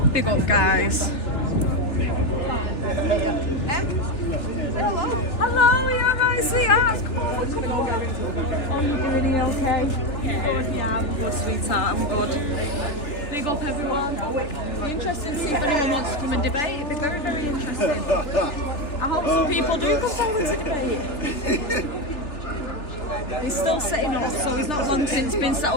Big up, guys. Hello, you alright, sweetheart? Come over. Oh, you're doing okay? Yeah, I'm good, sweetheart. I'm good. Big up, everyone. Be interested to see if anyone wants to come and debate. It'd be very, very interesting. I hope some people do come forward to debate. He's still sitting up, so he's not long since been set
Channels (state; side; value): late; right; 3.4 ms